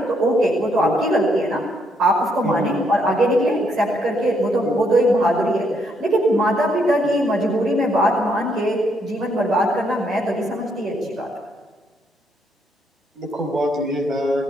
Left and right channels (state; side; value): normal; both; correlation 0.73